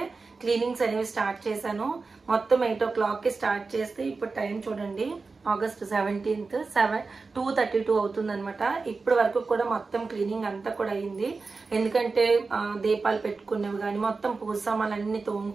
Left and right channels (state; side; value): quieter; left; 4.2 dB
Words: క్లీనింగ్స్ అనేవి స్టార్ట్ చేశాను. మొత్తం 8 o'clockకి స్టార్ట్ చేస్తే ఇప్పుడు టైం చూడండి, ఆగస్ట్ 17th 2:32 అవుతుంది అనమాట. ఇప్పటి వరకు కూడా మొత్తం క్లీనింగ్ అంతా కూడా అయింది. ఎందుకంటే దీపాలు పెట్టుకునేవి కానీ మొత్తం పూజ సామాన్లన్నీ